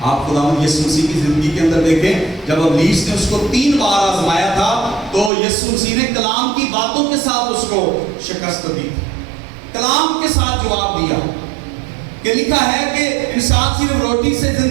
آپ خداوند یسوع مسیح کی زندگی کے اندر دیکھیں، جب ابلیس نے اس کو 3 بار آزمایا تھا تو یسوع مسیح نے کلام کی باتوں کے ساتھ اس کو شکست دی، کلام کے ساتھ جواب دیا کہ لکھا ہے کہ انسان صرف روٹی سے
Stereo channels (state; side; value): drops out; left; at 5.3 s